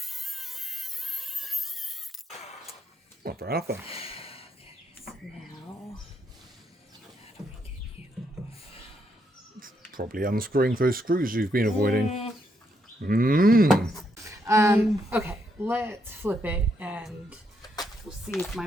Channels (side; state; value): both; normal; correlation 0.77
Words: Not fair enough then. So now, how do we get you off? Probably unscrewing those screws you've been avoiding. Okay, let's flip it and we'll see if my